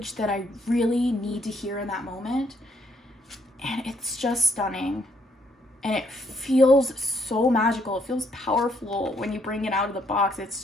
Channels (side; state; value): both; normal; correlation 0.71